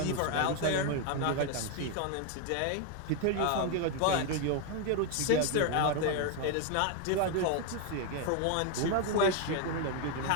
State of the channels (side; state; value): both; different; correlation 0.01